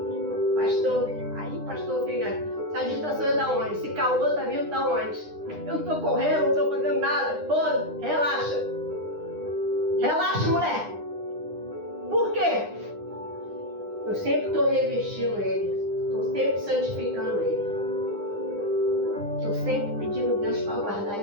pastor fica. Essa agitação é da onde? Esse calor tá vindo da onde? Eu não tô correndo, não tô fazendo nada. Pô, relaxa. Relaxa, mulher. Por quê? Eu sempre estou revestindo ele. Estou sempre santificando ele. Estou sempre pedindo a Deus para guardar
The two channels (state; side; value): late; left; 9.8 ms